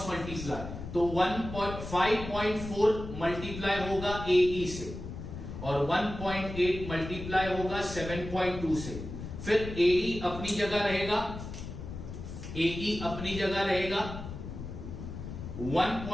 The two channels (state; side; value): noise; left; rumble, 9 dB below the sound